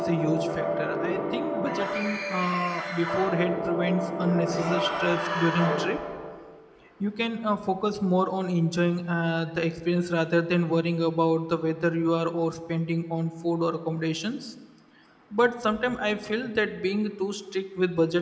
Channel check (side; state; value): both; identical; correlation 1.00